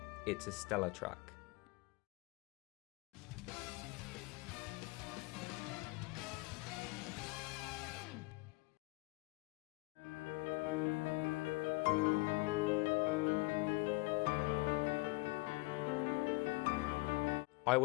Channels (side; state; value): right; quieter; 25.1 dB